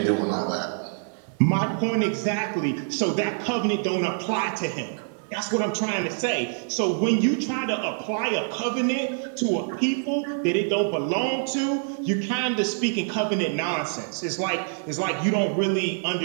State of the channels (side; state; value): left; silent; 61 dB below the other